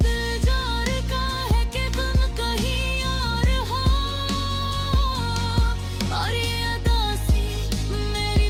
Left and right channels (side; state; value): both; identical; correlation 1.00